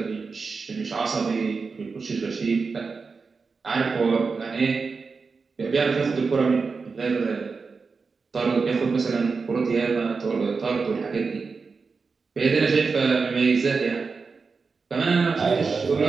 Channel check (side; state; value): left; quieter; 4.7 dB